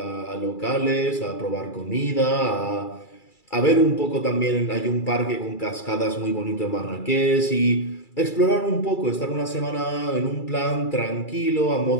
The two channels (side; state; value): right; late; 2.3 ms